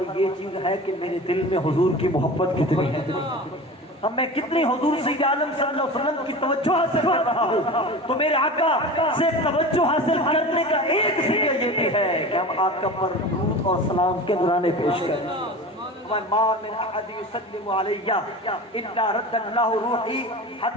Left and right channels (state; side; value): normal; both; correlation 0.33